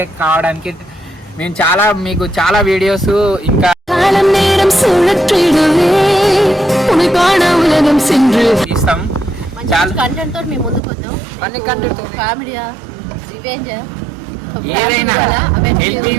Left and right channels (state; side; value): drops out; left; at 10.8 s